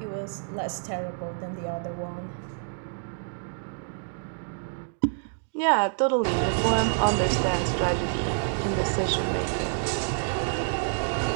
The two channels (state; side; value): silent; left; digital silence